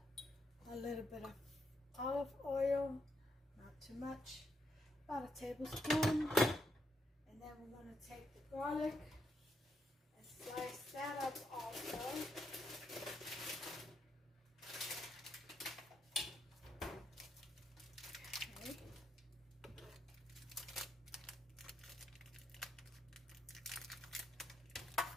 A little bit of olive oil, not too much, about a tablespoon. And then we're going to take the garlic and slice that up also. Okay.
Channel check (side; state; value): both; normal; correlation 0.79